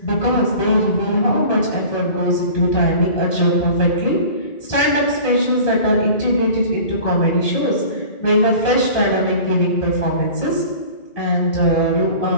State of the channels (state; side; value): late; right; 1.7 ms